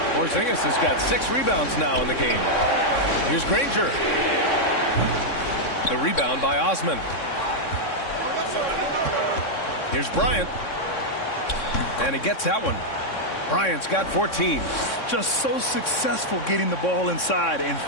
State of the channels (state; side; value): late; right; 3.6 ms